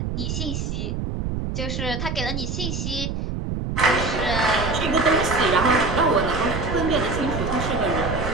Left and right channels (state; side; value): noise; right; rumble, 3 dB below the sound